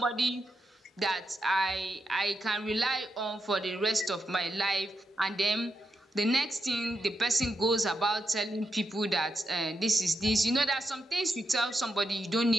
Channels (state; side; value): normal; both; correlation 0.85